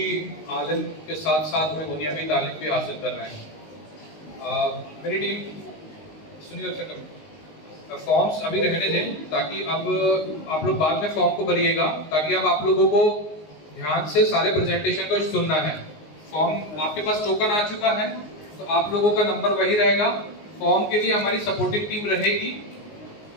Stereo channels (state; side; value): late; right; 19 ms